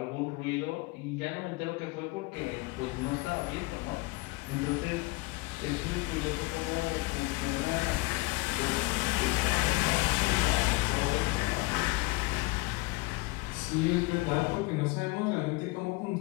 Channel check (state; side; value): quieter; right; 23.2 dB